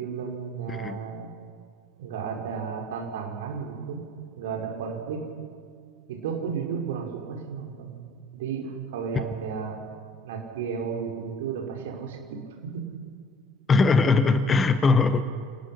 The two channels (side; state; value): both; normal; correlation 0.55